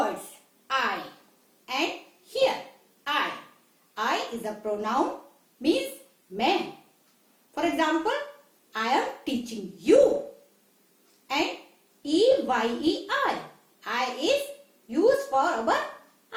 I and here, I. I is a pronoun, means मैं. For example, I am teaching you. And E-Y-E-I. I is used for our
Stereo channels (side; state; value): both; identical; correlation 1.00